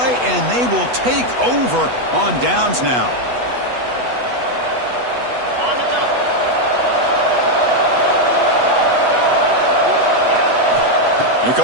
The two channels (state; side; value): late; left; 8.2 ms